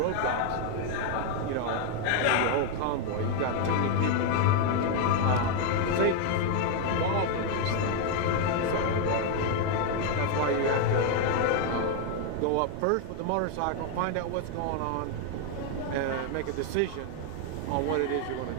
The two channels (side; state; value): both; different; correlation 0.01